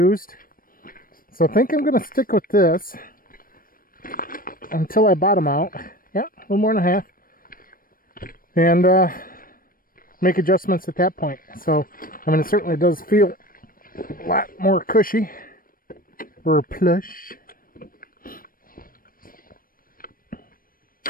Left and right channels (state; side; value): late; right; 0.41 ms